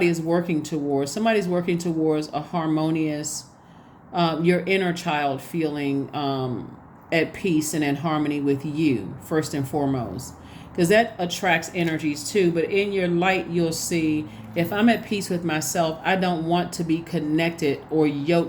is working towards. Somebody's working towards a harmonious, your inner child feeling at peace and in harmony with you, first and foremost. Because that attracts energies too. But in your light, you'll see, if I'm at peace with myself, I don't want to be connected or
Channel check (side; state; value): both; identical; correlation 1.00